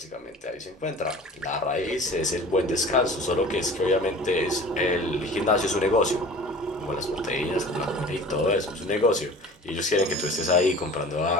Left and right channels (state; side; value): normal; both; correlation 0.42